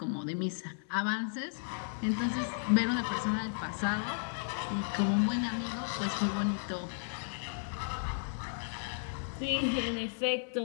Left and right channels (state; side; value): silent; right; 55 dB below the other